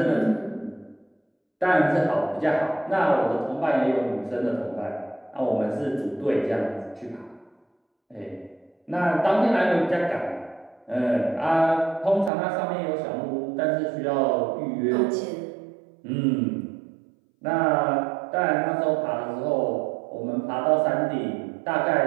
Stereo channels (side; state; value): left; drops out; at 12.3 s